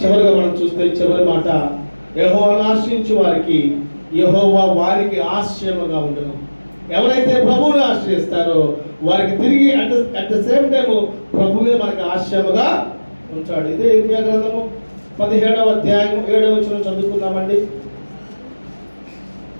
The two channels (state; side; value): inverted; both; correlation -1.00